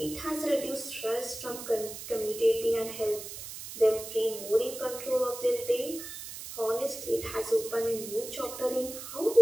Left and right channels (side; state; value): right; noise; hiss, 10 dB below the sound